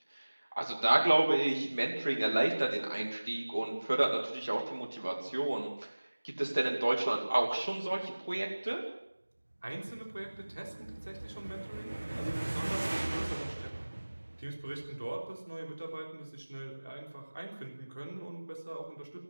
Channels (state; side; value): inverted; both; correlation -1.00